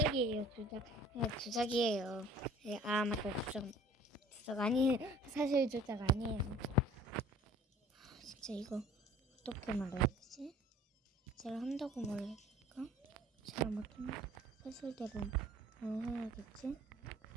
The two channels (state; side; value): normal; both; correlation 0.49